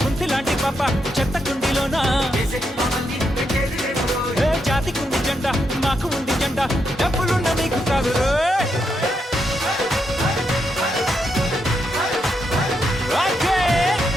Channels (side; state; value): both; normal; correlation 0.81